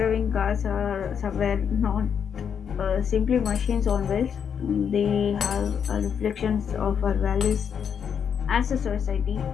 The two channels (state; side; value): quieter; right; 7.5 dB